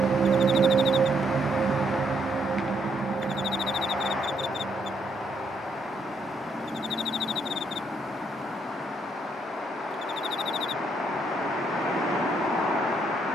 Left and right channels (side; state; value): both; normal; correlation 0.73